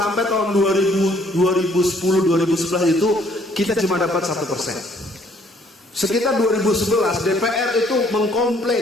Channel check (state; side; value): normal; both; correlation 0.63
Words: tahun 2010-2011 itu kita cuma dapat 1%. Sekitar 2011 DPR itu